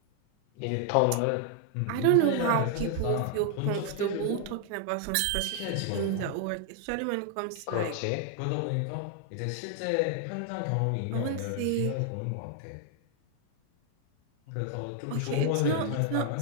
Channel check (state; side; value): different; both; correlation 0.00